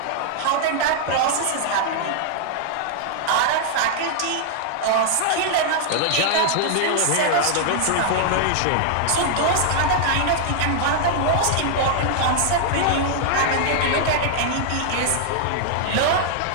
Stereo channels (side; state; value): both; different; correlation -0.01